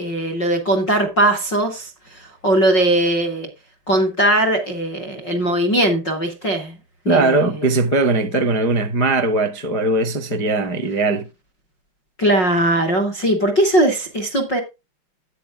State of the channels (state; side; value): late; right; 5.5 ms